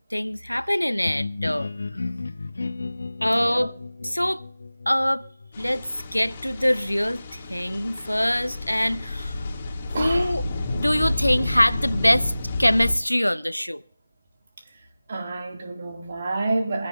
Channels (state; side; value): inverted; both; correlation -0.97